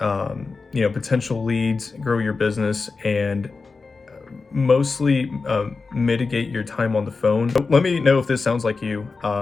leads, grow your business, and mostly mitigate your time on the phone. So let me know if this sounds like you.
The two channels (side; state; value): right; quieter; 4.3 dB